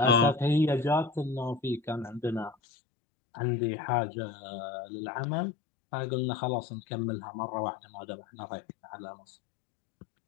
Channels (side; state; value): right; drops out; at 2.6 s